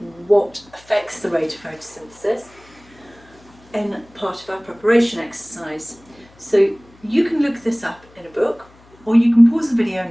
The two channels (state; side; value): noise; left; hum, 27 dB below the sound